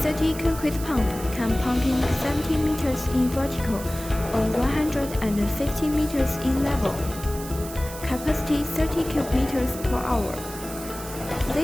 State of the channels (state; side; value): noise; right; hiss, 13 dB below the sound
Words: concrete pump can pumping 70 meters in vertical or 150 meters in level. Capacity 30 cubic meters per hour.